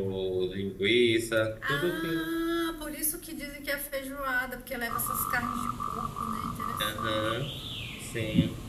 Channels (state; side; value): identical; both; correlation 1.00